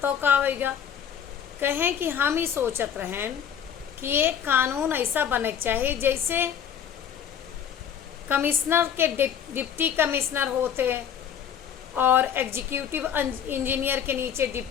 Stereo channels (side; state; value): right; quieter; 8.5 dB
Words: का आवेगा। कहें कि हम ही सोचत रहें कि एक कानून ऐसा बने चाहिए जैसे कमिश्नर के डिप्टी कमिश्नर होते और एग्जीक्यूटिव इंजीनियर के नीचे